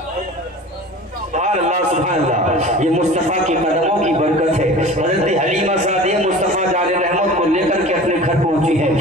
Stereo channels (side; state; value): both; normal; correlation 0.39